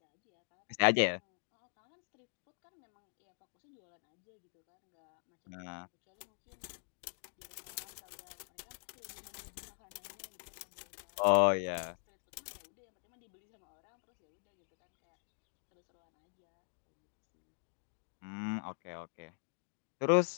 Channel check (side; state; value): right; silent; digital silence